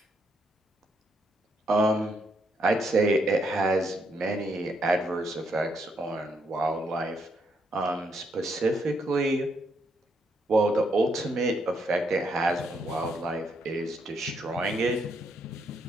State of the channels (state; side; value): normal; both; correlation 0.75